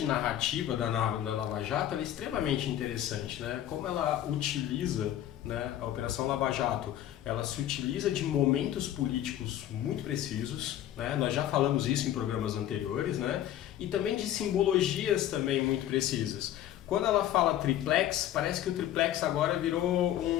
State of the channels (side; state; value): right; quieter; 12.1 dB